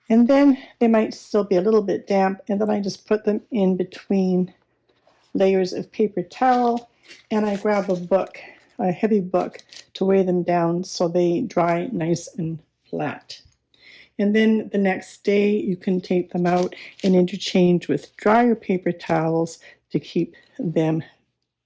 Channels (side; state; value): both; identical; correlation 1.00